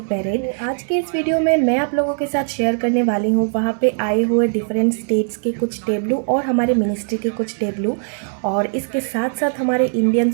परेड। तो आज के इस वीडियो में मैं आप लोगों के साथ शेयर करने वाली हूँ वहाँ पे आए हुए डिफरेंट स्टेट्स के कुछ टेबलू और हमारे मिनिस्ट्री के कुछ टेबलू, और इसके साथ साथ हमारे इंडियन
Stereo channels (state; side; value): silent; left; digital silence